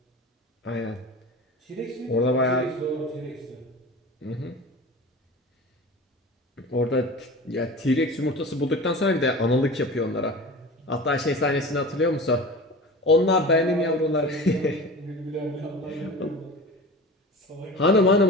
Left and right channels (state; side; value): normal; both; correlation 0.34